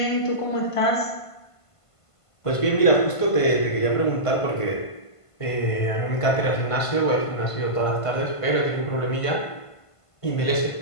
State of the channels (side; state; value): right; late; 1.5 ms